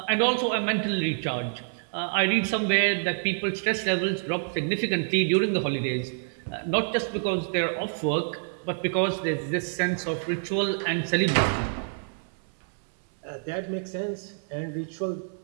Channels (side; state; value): left; silent; 60 dB below the other